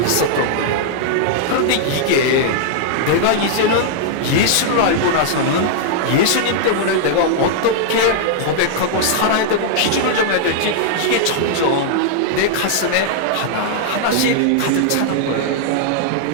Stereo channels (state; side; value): different; both; correlation -0.01